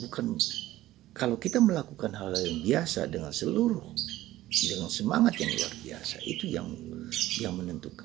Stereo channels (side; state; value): left; quieter; 15.5 dB